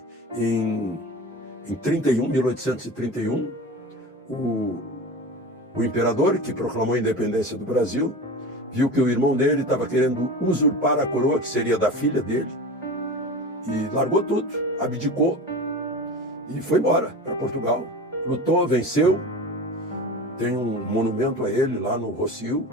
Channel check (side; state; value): both; normal; correlation 0.31